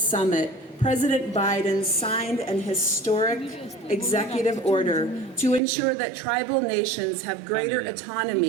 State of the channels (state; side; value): drops out; left; at 5.6 s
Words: Summit, President Biden signed an historic executive order to ensure that tribal nations have greater